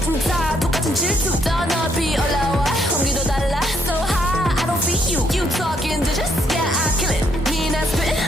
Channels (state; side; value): normal; both; correlation 0.72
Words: tired. 똑같은 질투. 더 높이 올라와. 공기도 달라. So high. I don't feel you. You talking digits. Yeah, I kill it. Mean I spit